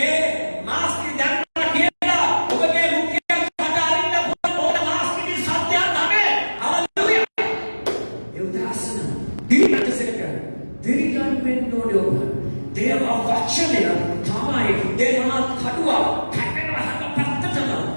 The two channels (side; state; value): both; inverted; correlation -1.00